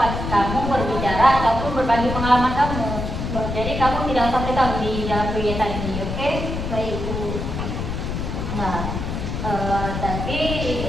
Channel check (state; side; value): noise; left; rumble, 4 dB below the sound